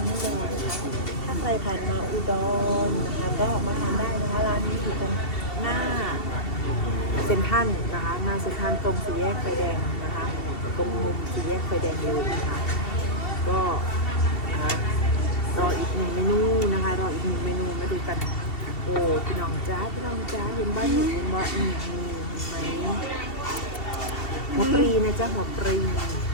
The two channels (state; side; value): late; right; 2.7 ms